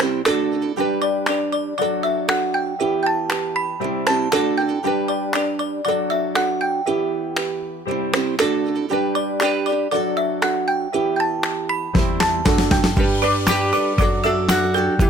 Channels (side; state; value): both; normal; correlation 0.66